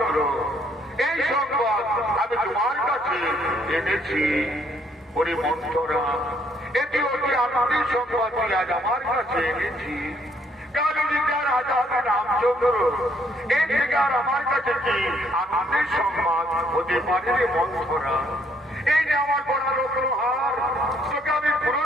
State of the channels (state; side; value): normal; both; correlation 0.67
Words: এই সংবাদ আমি তোমার কাছে এনেছি। ওরে মন্থরা, এটি অতি আনন্দের সংবাদ আজ আমার কাছে এনেছি। কালীনগর রাজা হবে রামচন্দ্র, এর থেকে আর আমার কাছে কি আনন্দের সংবাদ হতে পারে রে মন্থরা? এই যে আমার বড় রত্নহার, তোকে আমি